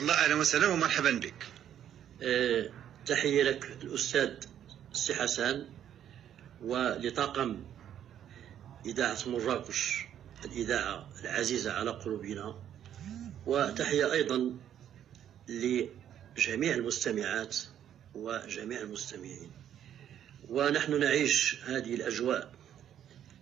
الله، أهلا وسهلا ومرحبا بك. تحية لك الأستاذ السي حسن ولطاقم إذاعة مراكش، الإذاعة العزيزة على قلوبنا، وتحية أيضا لجميع المستمعات وجميع المستمعين. ونحن نعيش هذه الأجواء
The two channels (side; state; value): left; quieter; 10.2 dB